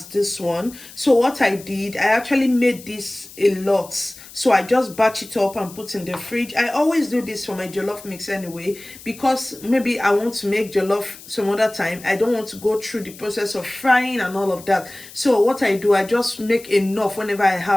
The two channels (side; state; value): left; noise; hiss, 18 dB below the sound